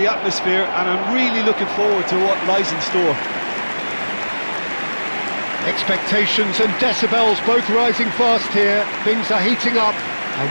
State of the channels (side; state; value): both; inverted; correlation -1.00